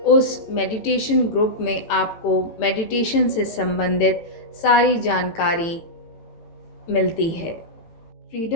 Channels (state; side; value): late; right; 18 ms